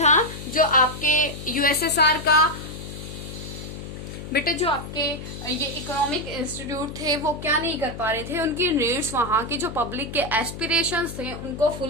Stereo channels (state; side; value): noise; left; hum, 10 dB below the sound